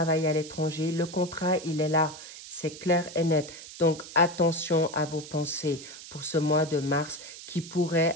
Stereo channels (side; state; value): right; noise; hiss, 14 dB below the sound